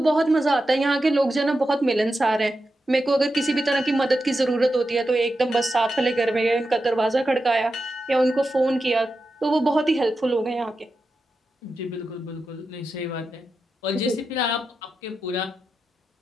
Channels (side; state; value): both; normal; correlation 0.89